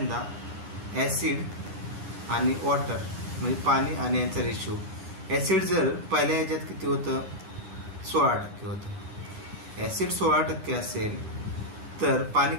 ऍसिड आणि वॉटर म्हणजे पाणी आणि यांचा रेशिओ. ऍसिड जर पहिल्या ह्याच्यात किती होतं? 16% होतं. ऍसिड 16% असेल तर पाणी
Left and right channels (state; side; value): late; left; 9.7 ms